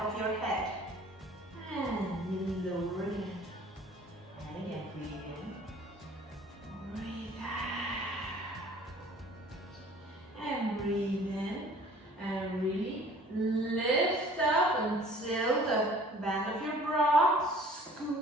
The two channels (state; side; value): normal; both; correlation 0.50